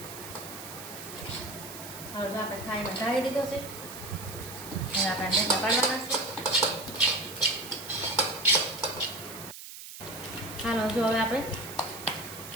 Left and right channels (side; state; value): right; noise; hiss, 12 dB below the sound